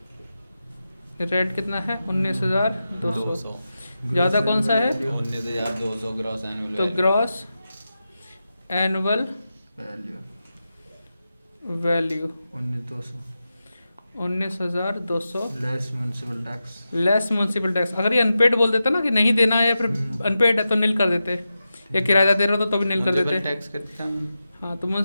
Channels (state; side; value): inverted; both; correlation -0.91